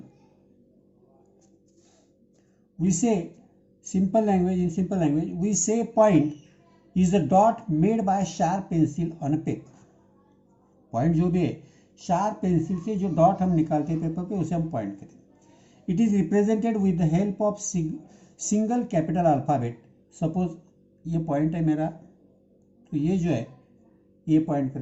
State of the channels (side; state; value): both; identical; correlation 1.00